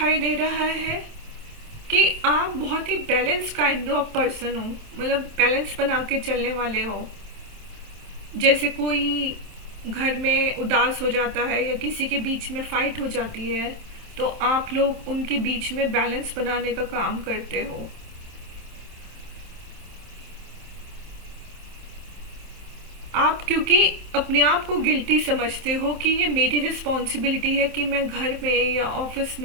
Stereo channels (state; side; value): late; left; 27 ms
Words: दे रहा है कि आप बहुत ही बैलेंस काइंड ऑफ पर्सन हो, मतलब बैलेंस बना के चलने वाले हो। जैसे कोई घर में उदास हो जाता है या किसी के बीच में फाइट हो जाती है तो आप लोग उनके बीच में बैलेंस बनाने का काम करते हो। आप क्योंकि अपने आप को गिल्टी समझते हो कि ये मेरी रिस्पॉन्सिबिलिटी है कि मैं घर में या ऑफिस